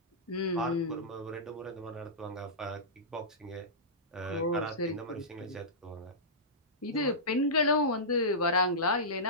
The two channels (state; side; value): normal; both; correlation -0.16